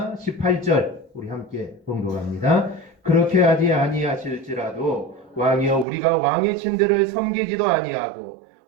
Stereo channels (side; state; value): left; drops out; at 5.9 s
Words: 18절 우리 함께 봉독합니다. 그렇게 하지 아니하실지라도 왕이여 우리가 왕의 신들을 섬기지도 아니하고